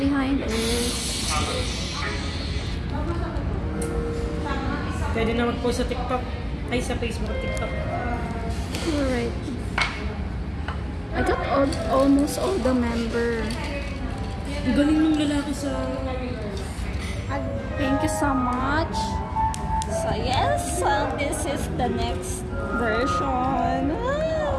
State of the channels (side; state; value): both; identical; correlation 1.00